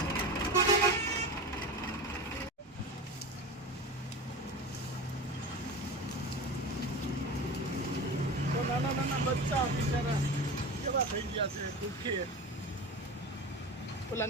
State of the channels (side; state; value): both; normal; correlation 0.29